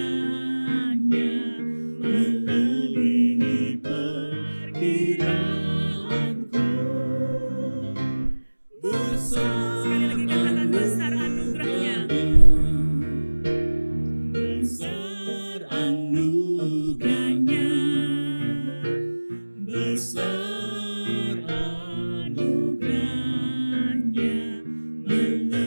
melebihi perkiraanku. Besar, sekali lagi katakan besar anugerahnya, besar anugerahnya, besar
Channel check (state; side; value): inverted; both; correlation -1.00